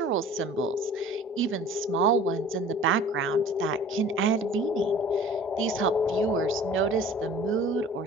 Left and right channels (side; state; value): both; normal; correlation 0.46